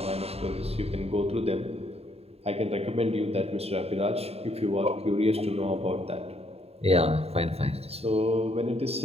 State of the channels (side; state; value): left; late; 0.29 ms